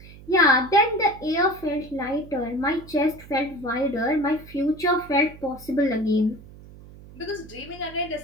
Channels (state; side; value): noise; right; hum, 19 dB below the sound